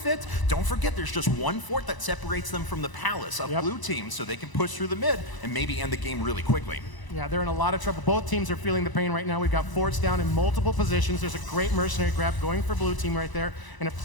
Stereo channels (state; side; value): late; right; 1.0 ms